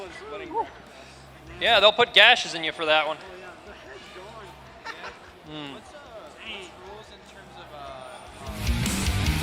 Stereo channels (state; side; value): identical; both; correlation 1.00